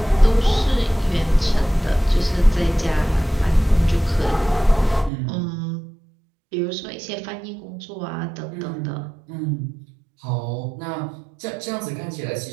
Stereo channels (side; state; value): left; drops out; at 5.1 s